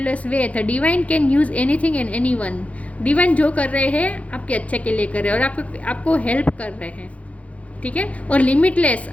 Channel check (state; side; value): late; right; 0.066 ms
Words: way, the divine can use anything and anyone. Divine जो कर रहे हैं आपके अच्छे के लिए कर रहे हैं, और आपको हेल्प कर रहे हैं, ठीक है। और लिमिटलेस,